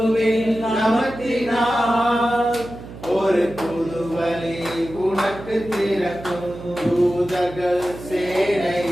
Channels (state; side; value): noise; right; hum, 14 dB below the sound